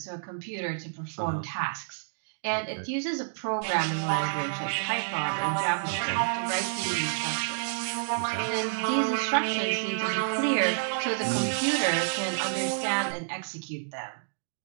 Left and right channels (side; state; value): left; silent; digital silence